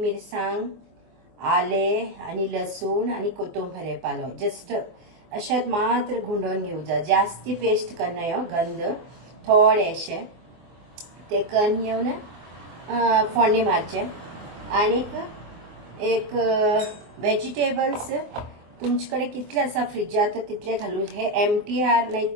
आले आणि लसूण आणि कोथंबीर पालो जस्ट अशें मात्र गुंडोवन घेवचा. जास्ती पेस्ट करना ह्यो गंध थोडेशे ते करून घेवन फोडणी मारचे. आणि एक व्हेजिटेबल्स तुमचे कितले आसा फ्रिजात तितले घालून हे MTR नाही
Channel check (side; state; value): left; late; 24 ms